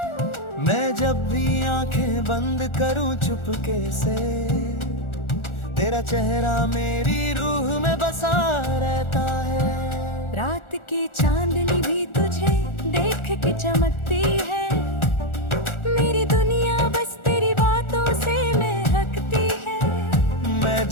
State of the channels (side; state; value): right; late; 1.4 ms